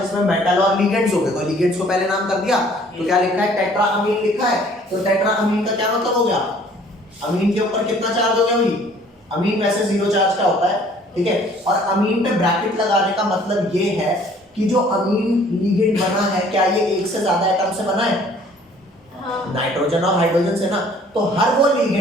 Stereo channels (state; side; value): normal; both; correlation 0.56